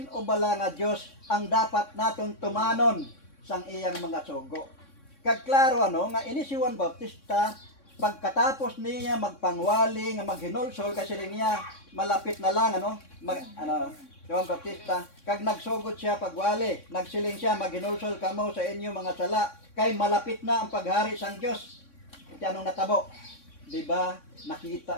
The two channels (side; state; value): right; late; 3.6 ms